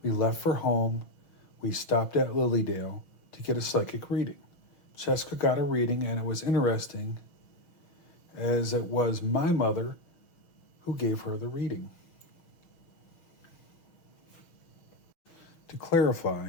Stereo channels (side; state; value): right; late; 6.3 ms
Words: We left for home. We stopped at Lilydale to get a psychic reading. Jessica got a reading, and it was interesting, as it was my mother who gave her the reading. To